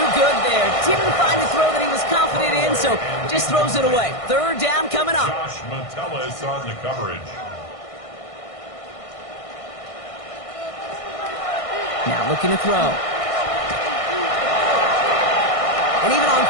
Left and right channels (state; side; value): late; right; 1.6 ms